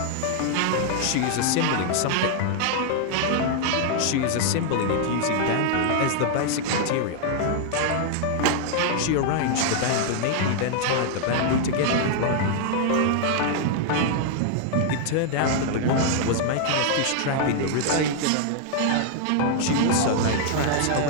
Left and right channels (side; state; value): both; different; correlation 0.00